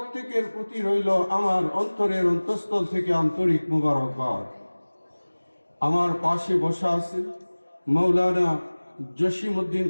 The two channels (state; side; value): inverted; both; correlation -1.00